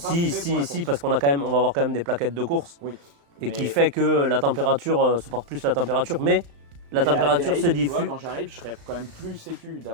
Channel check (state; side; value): late; left; 35 ms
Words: faits pour la course. Si, parce qu'on a quand même, on va avoir quand même des plaquettes de course. Oui, Et mais, qui fait que la température supporte plus la température, mais la mais à température Adélaïde, se tu vois, diffuse. quand j'arrive, je serais quand même plus sécu